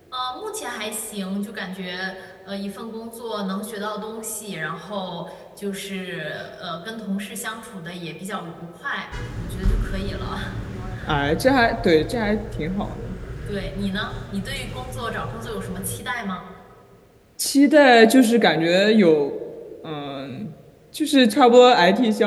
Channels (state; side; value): identical; both; correlation 1.00